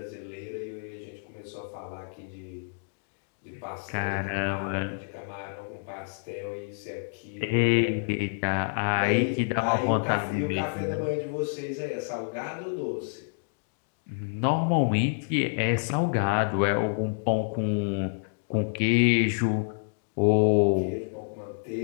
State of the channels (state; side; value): silent; right; digital silence